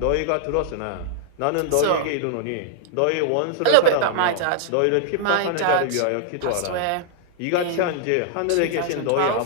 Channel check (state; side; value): different; both; correlation -0.01